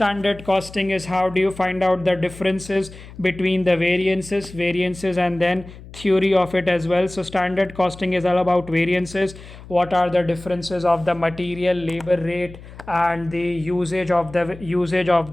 costing is how do you find out the differences between the variances, and then theory of it as well. So standard costing is all about variances, what are the differences of the material, labor rate, and the usage of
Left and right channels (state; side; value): noise; left; hum, 17 dB below the sound